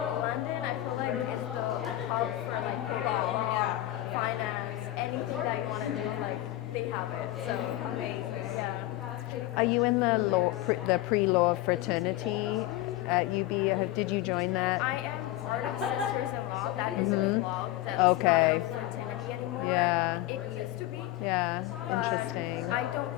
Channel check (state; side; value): quieter; right; 15.5 dB